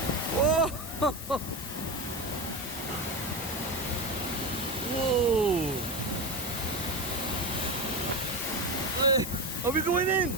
Whoa. Whoa. Are we going in? No,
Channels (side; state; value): both; normal; correlation 0.20